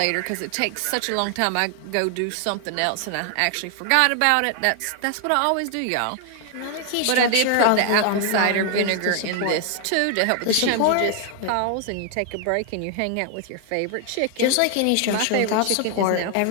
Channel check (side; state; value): both; different; correlation 0.00